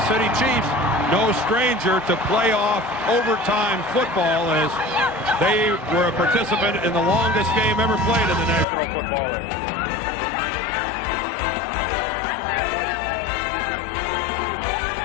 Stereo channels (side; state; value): right; drops out; at 8.7 s